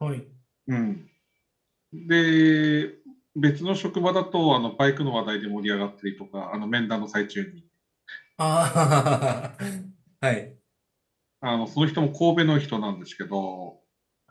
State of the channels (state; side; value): identical; both; correlation 1.00